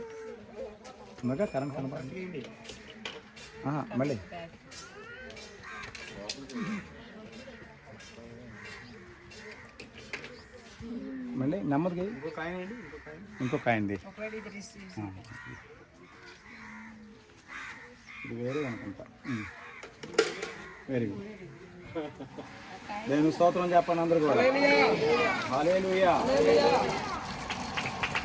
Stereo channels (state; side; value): identical; both; correlation 1.00